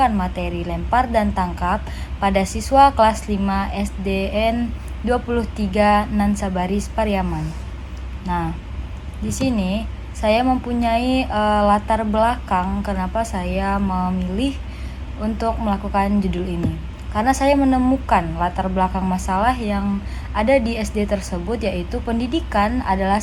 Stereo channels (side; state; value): both; identical; correlation 1.00